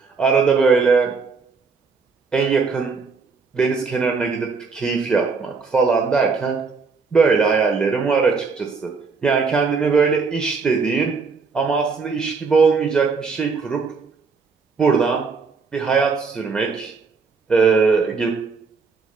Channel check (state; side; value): quieter; left; 4.8 dB